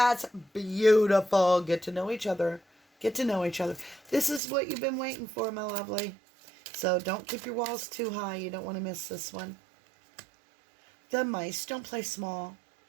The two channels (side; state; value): left; drops out; at 4.4 s